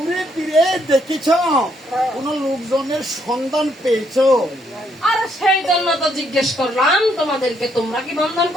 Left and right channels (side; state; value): both; normal; correlation 0.72